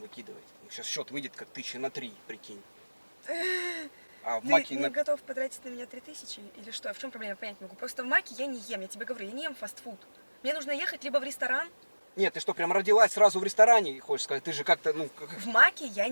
выкидывать? Сейчас счет выйдет как 1000 на 3, прикинь. А в Ты Маке не готов потратить на меня 3000 или что? В чем проблема? Я понять не могу. Просто в Маке я не ем, я тебе говорю, я не ем фастфуд. Мне нужно ехать либо в ресторан. Нет, ты что, прям родилась сразу в ресторане, хочешь сказать? Ты же как-то, ну... В Маке я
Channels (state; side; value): inverted; both; correlation -1.00